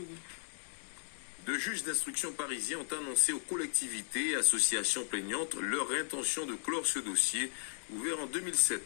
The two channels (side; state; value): right; silent; digital silence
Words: Deux juges d'instruction parisiens ont annoncé aux collectivités et associations plaignantes leur intention de clore ce dossier, ouvert en